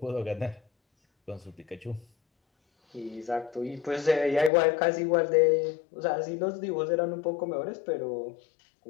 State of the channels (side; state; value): right; drops out; at 4.5 s